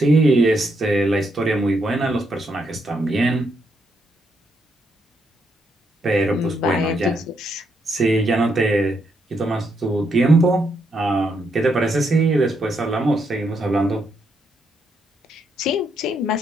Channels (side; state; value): both; normal; correlation 0.77